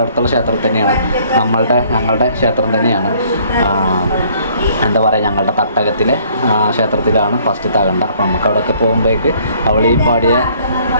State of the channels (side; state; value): both; inverted; correlation -0.60